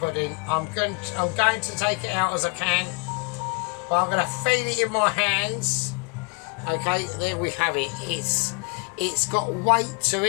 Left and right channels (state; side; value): quieter; right; 32.6 dB